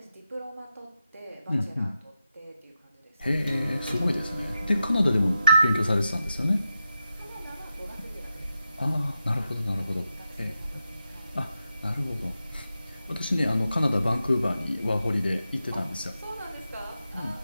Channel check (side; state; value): both; inverted; correlation -0.89